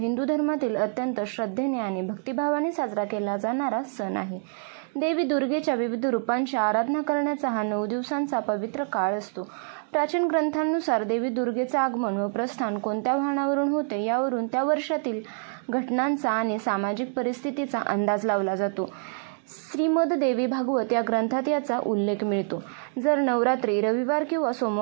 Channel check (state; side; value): silent; left; 61 dB below the other